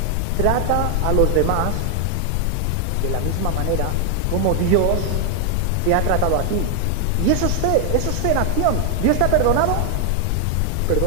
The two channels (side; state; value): both; different; correlation 0.00